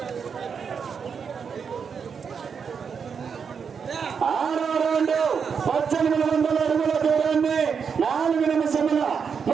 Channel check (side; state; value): left; quieter; 6.4 dB